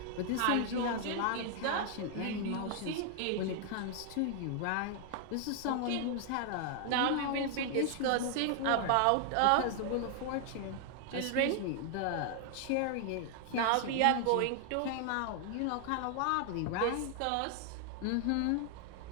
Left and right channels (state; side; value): different; both; correlation 0.00